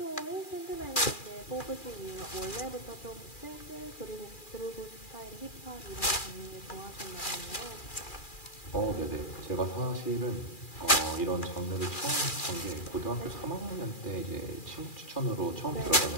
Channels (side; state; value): right; late; 2.4 ms